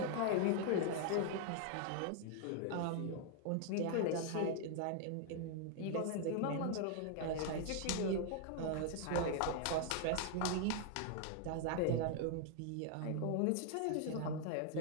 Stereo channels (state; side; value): different; both; correlation 0.00